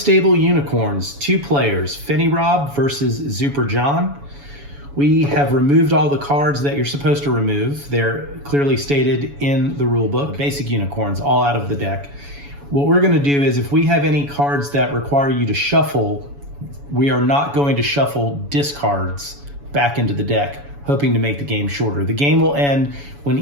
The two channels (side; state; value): left; late; 7.1 ms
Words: Unicorns, 2 players, fenirob versus Super John. We have removed all the cards that you're supposed to remove. They're clearly stated in the rule book. Basic unicorns, all out of the deck. What we're going to do is if we have any cards that require you to shuffle, we are not going to shuffle discards back into the deck, hoping to make the game shorter. The game will end when